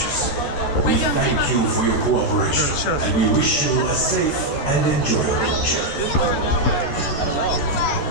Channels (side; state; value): right; late; 14 ms